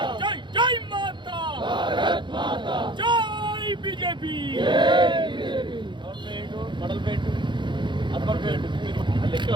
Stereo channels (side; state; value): left; late; 0.23 ms